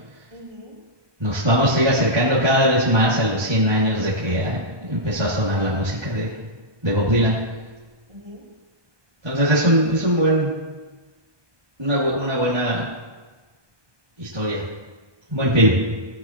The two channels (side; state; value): left; late; 1.2 ms